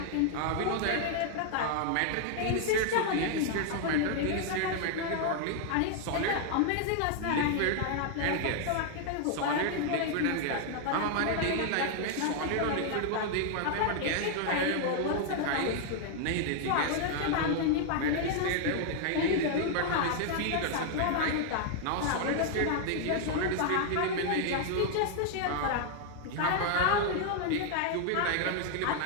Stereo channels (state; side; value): different; both; correlation 0.00